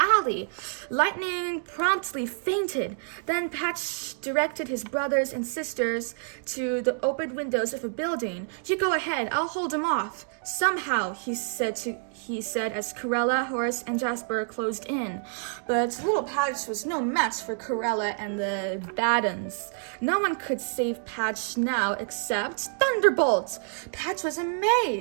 Lightning promptly fainted. Then Patch directed his brothers and sisters to the open windows of a building. "You go ahead, I'll hold him off." "Somehow," he said as Corella, Horace, and Jasper closed in. But little Patch was no match for Corella and the Baddens. No one could save Patch now except Thunderbolt. Patch was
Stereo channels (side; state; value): left; silent; 60 dB below the other